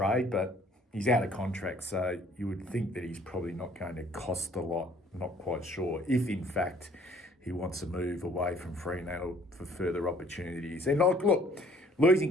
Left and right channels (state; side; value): normal; both; correlation 0.58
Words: but he's out of contract, so you would think that he's probably not going to cost a lot. Not quite sure if, in fact, he wants to move away from Fremantle for further opportunities. And look, losing